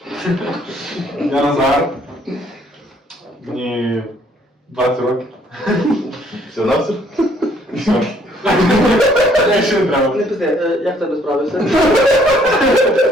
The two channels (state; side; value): normal; both; correlation 0.64